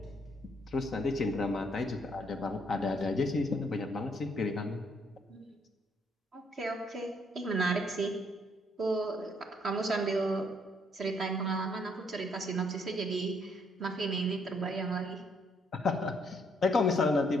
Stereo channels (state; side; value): normal; both; correlation 0.70